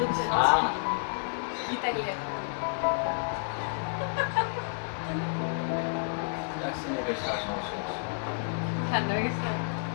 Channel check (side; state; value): right; silent; digital silence